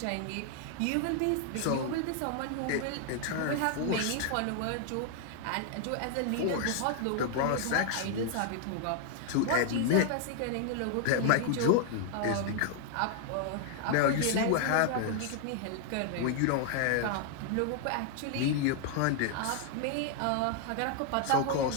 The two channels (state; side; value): different; both; correlation 0.00